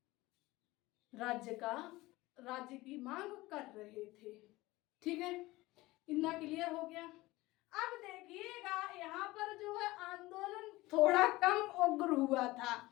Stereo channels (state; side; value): quieter; right; 19.6 dB